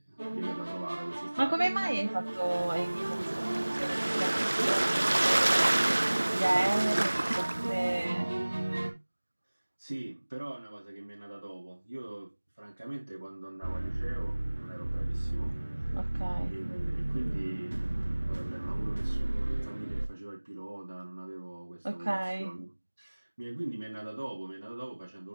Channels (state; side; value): inverted; both; correlation -1.00